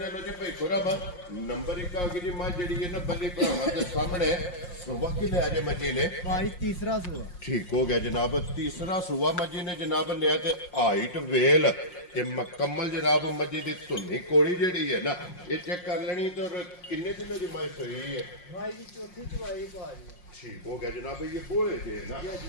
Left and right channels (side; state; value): right; late; 5.6 ms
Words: लो जी भाई खुरम नंबर एक आ गई जी मां जी है ना बल्ले भरावां दे सामने सुबह की ले आजे मजी ने भाई तीसरा सुआ ठीक हो गया जनाब। तीसरा सुबह मजी ने जनाब लिया ते हाइट वेल ये मुकम्मल जनाब मजी दी धुनी कोड़ी जेड़ी है ना ये चेक कर लेनी। तो किन्ने दिनों की माई सोई है? भाई जी चौथी चुवाई भाई ठीक हो गया जनाब। ये बोले जे ना